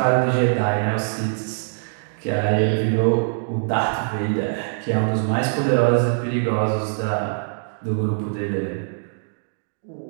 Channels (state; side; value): silent; left; digital silence